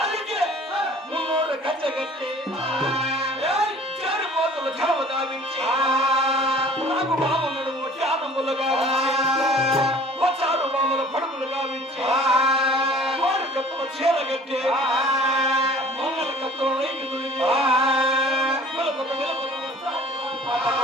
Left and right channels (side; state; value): both; normal; correlation 0.49